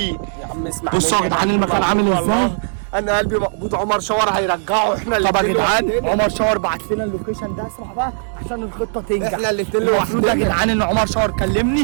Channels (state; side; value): silent; left; digital silence